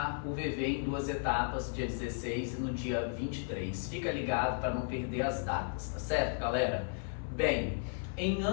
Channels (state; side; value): silent; right; 55 dB below the other